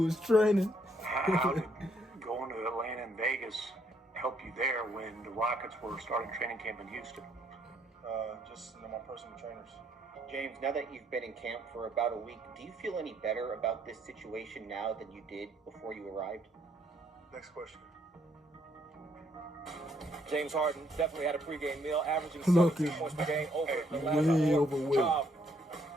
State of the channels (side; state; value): both; normal; correlation 0.70